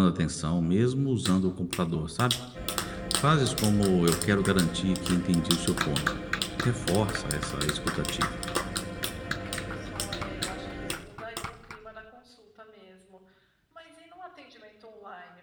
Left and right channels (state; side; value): identical; both; correlation 1.00